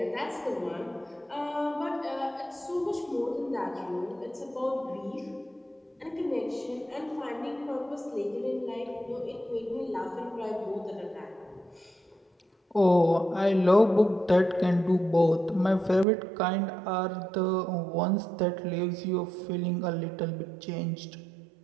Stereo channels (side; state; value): left; drops out; at 16.1 s